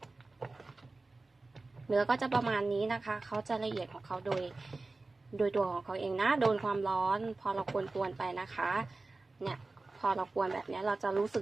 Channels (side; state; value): left; quieter; 3.4 dB